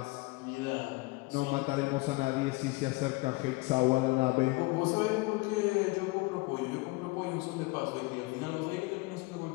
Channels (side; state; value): right; quieter; 23.8 dB